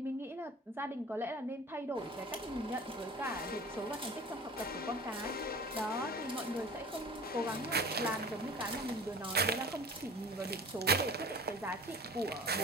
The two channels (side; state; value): both; normal; correlation 0.41